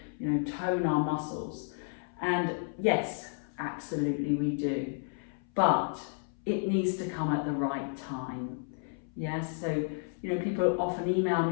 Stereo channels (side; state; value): right; silent; 56 dB below the other